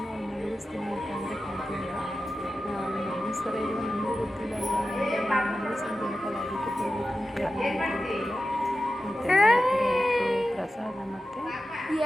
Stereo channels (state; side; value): normal; both; correlation 0.93